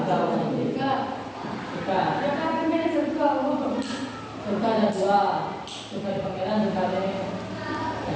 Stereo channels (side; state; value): both; identical; correlation 1.00